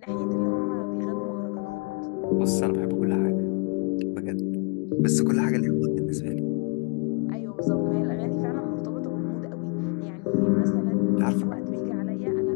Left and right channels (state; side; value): quieter; right; 34.3 dB